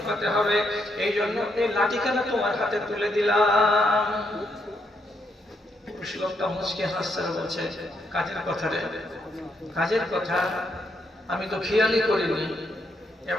হবে। এই জন্য এই লাঠিখানা তোমার হাতে তুলে দিলাম। লোকটা মুচকে হাসছে, বলছে, কাজের কথা রে, কাজের কথা আমি তো খেয়ালই করিনি।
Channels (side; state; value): both; normal; correlation 0.77